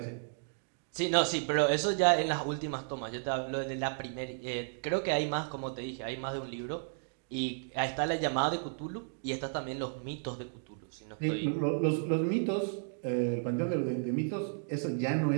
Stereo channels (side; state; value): left; silent; digital silence